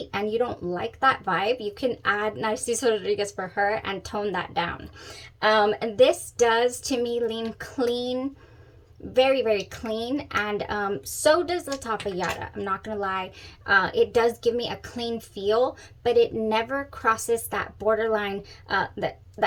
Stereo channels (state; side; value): identical; both; correlation 1.00